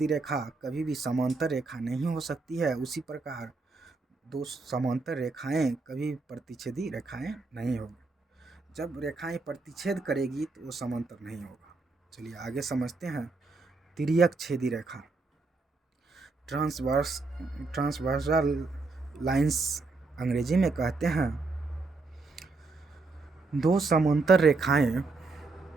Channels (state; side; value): quieter; left; 3.8 dB